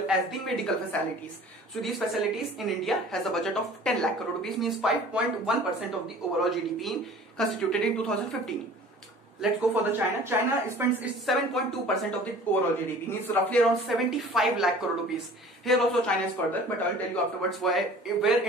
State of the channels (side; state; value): both; normal; correlation 0.46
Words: as the medical facilities. So these facilities in India has a budget of 10 lakh crore rupees, means 5.1% of the overall GDP constituted in 2015. Let's go for the China. China spends 7.2% of the overall GDP, means roughly around 75 lakh crore rupees. Here also China is further, but I'll tell you afterwards where